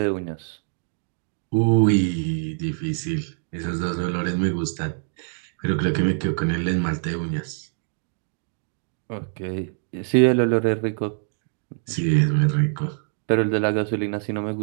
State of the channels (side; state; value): left; silent; 62 dB below the other